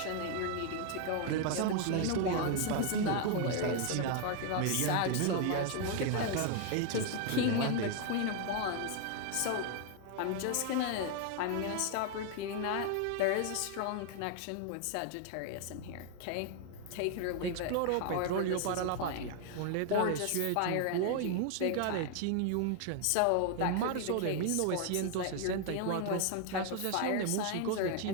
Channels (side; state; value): both; different; correlation 0.00